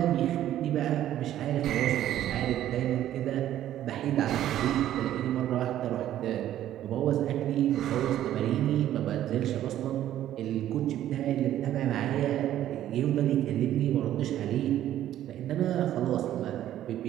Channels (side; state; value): left; quieter; 12.3 dB